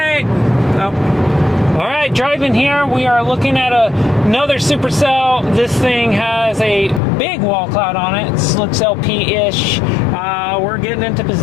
Alright, driving here, we are looking at another supercell. This thing has a big wall cloud on it. It looks LP-ish. We're getting into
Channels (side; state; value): right; drops out; at 7.0 s